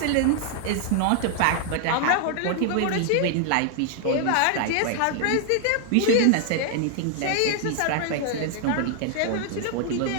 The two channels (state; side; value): different; both; correlation 0.00